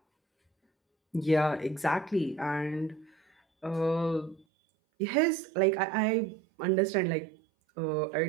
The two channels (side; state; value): left; drops out; at 4.5 s